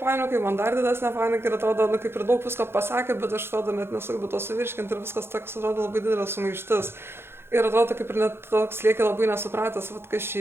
panikai, man dar didesnė panika ir atrodo, kaip ir daug visko pasakė, bet aš atrodo net nesugebu to suvirškinti ir viskas toks atrodo labai didelė sumaištis. Ir atrodo, kaip ir net toks lieki labai nesupratęs, kas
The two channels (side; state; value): left; late; 0.11 ms